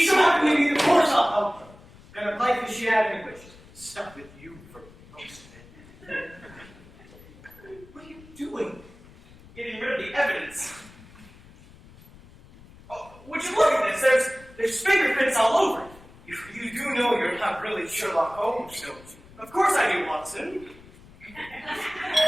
Stop me! Of course I'll help her. What kind of life has she had anyway? She's been stuck with you for most of it. What are you doing? getting rid of the evidence. Oh, would you look at this? There's fingerprints all over it. You do know you're not really Sherlock Holmes, don't you? Of course I do, Watson. Good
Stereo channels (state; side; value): noise; left; rumble, 22 dB below the sound